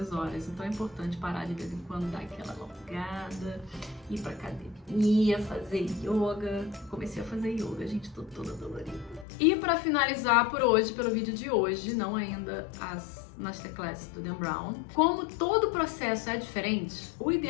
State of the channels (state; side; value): drops out; right; at 9.2 s